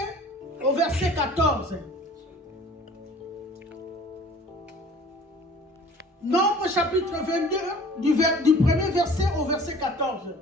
au verset 14. Nombre chapitre 22, du premier verset au verset 14.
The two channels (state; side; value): normal; both; correlation 0.48